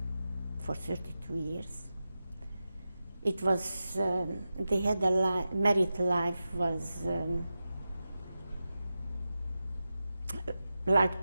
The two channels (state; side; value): inverted; both; correlation -0.92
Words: for 32 years. It was, they had married life was like